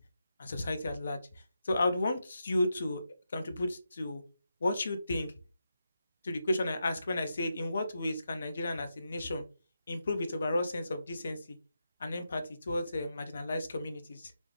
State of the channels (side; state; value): both; inverted; correlation -0.86